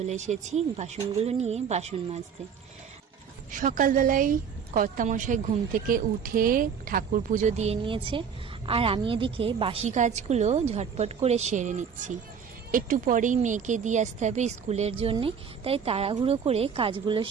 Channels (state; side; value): quieter; left; 6.9 dB